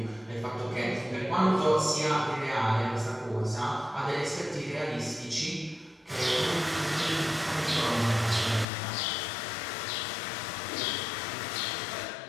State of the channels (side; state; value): right; drops out; at 8.7 s